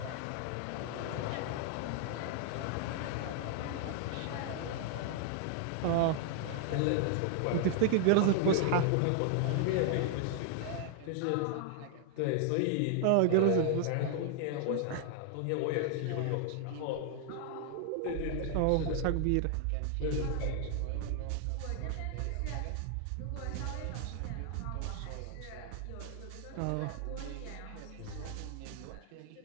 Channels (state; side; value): different; both; correlation 0.00